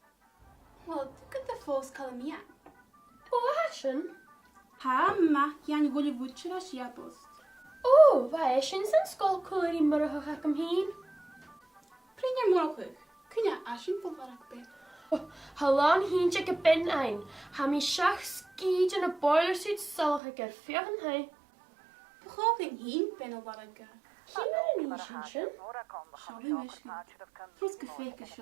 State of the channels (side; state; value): left; drops out; at 20.2 s